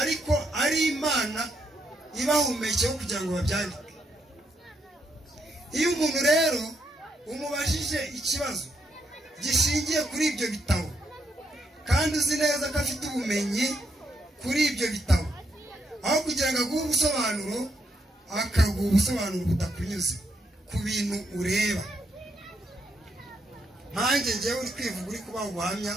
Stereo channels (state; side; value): normal; both; correlation 0.77